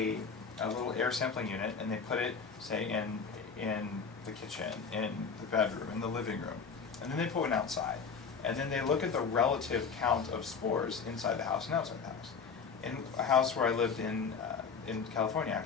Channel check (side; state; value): right; quieter; 5.7 dB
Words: little air sampling unit and they put it, say, in the kitchen, in the bedroom, in the living room. And then they put one outside. And then they look at the relative count of spores inside the house and outside the house. In a house where I lived in California,